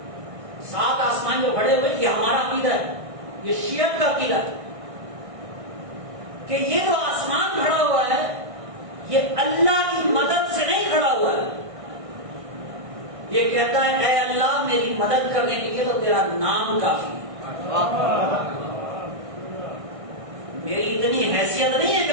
7 آسمان جو کھڑے ہوئے یہ ہمارا عقیدہ ہے، یہ شیعت کا عقیدہ ہے کہ یہ جو آسمان کھڑا ہوا ہے یہ اللہ کی مدد سے نہیں کھڑا ہوا ہے، یہ کہتا ہے اے اللہ میری مدد کرنے کے لیے تو تیرا نام کافی ہے، میری اتنی حیثیت نہیں ہے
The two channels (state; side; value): late; left; 1.6 ms